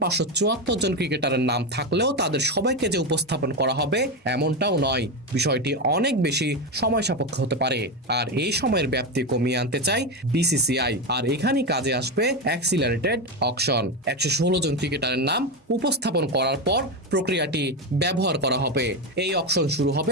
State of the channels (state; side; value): normal; both; correlation 0.13